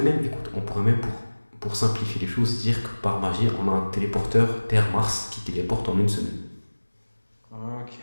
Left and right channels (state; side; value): inverted; both; correlation -1.00